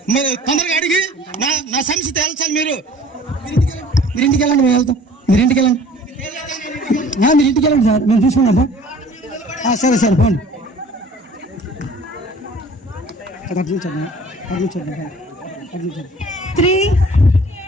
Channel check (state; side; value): normal; both; correlation 0.49